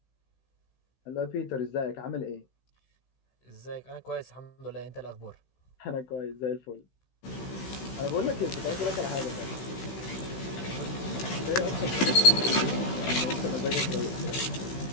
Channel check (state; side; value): late; right; 16 ms